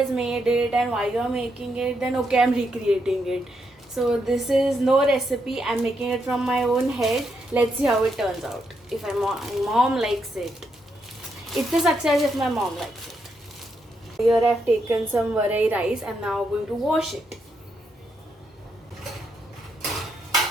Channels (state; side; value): normal; both; correlation 0.80